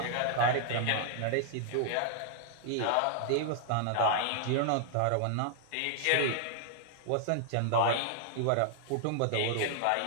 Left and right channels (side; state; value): both; different; correlation -0.01